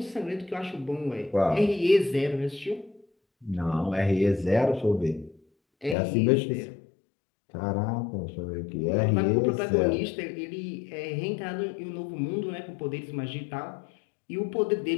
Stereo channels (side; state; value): right; drops out; at 6.0 s